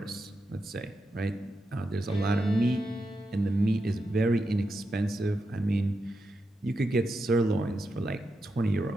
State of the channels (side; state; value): both; normal; correlation 0.87